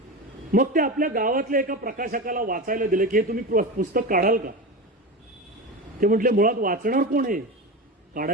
मग ते आपल्या गावातल्या एका प्रकाशकाला वाचायला दिलं की हे तुम्ही पुस्तक काढाल का? ते म्हटले मुळात वाचणार कोण आहे,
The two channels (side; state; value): both; normal; correlation 0.23